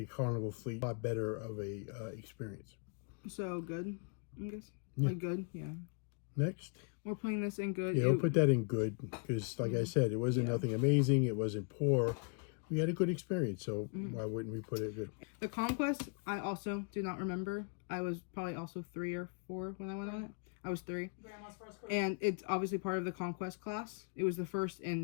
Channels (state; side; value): quieter; right; 38.0 dB